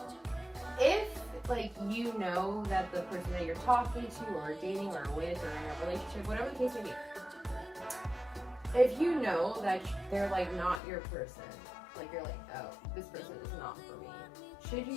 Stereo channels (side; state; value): right; drops out; at 10.8 s